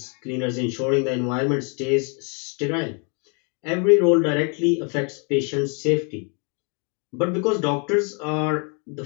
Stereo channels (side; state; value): right; quieter; 36.1 dB